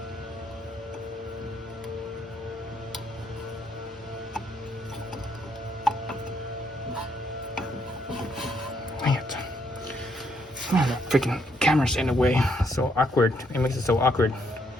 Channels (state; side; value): normal; both; correlation 0.72